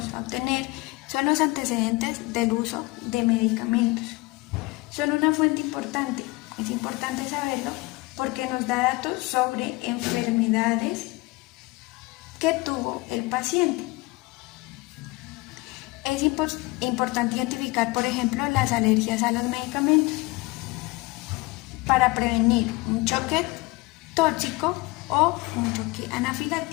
a obtener son los antecedentes del uso de medicamentos. Son una fuente importante, es importante saberlo porque nos da datos sobre enfermedades que tuvo el paciente. Es importante identificar, por ejemplo, las alergias a los medicamentos para prevenir un choque tóxico o un choque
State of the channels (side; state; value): right; quieter; 23.0 dB